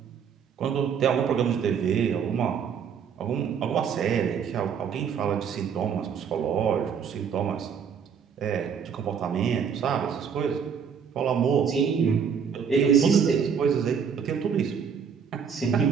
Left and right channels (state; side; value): quieter; left; 7.0 dB